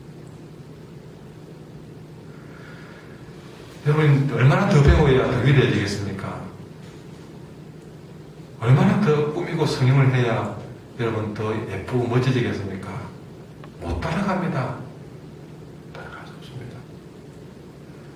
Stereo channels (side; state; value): both; identical; correlation 1.00